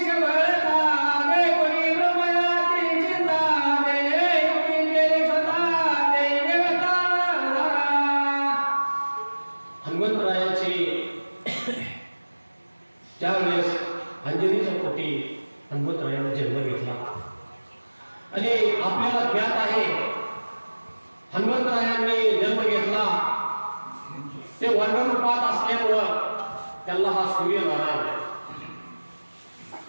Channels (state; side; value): inverted; both; correlation -1.00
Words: सबळता देवनी ब्रह्मयाची चिंता देवी केली स्वतः देवता. हनुमंतरायाची ज्यावेळेस अंजनीच्या पोटी हनुमंतरायाने जन्म घेतला आणि आपल्याला ज्ञात आहे हनुमंतरायांनी जन्म घेतला ते वर्णरूपात असल्यामुळं त्याला हा सूर्यनारायण